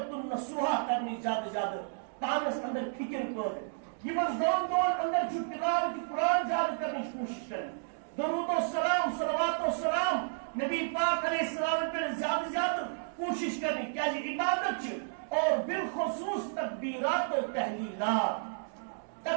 النصوحہ کرنی زیادہ پانس اندر فکر پٲدٕ یمن دہن دہن اندر چھ تلاوت قرآن زیادہ کرنے کوشش کریں درود و سلام صلوات و سلام نبی پاک علیہ السلام پر زیادہ کوشش کرنی کیا جی عبادت چھ اور بالخصوص تکبیرات و تحلیلات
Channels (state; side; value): silent; left; digital silence